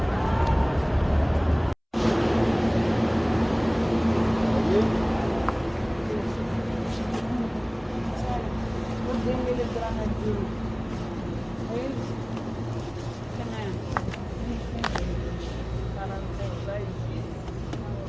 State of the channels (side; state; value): both; identical; correlation 1.00